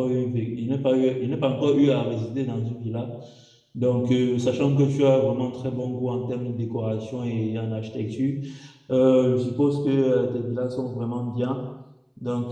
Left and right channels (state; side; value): identical; both; correlation 1.00